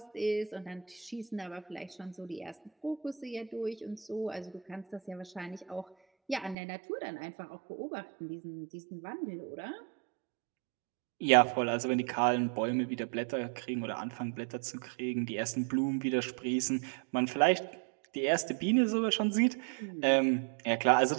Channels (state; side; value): drops out; left; at 6.6 s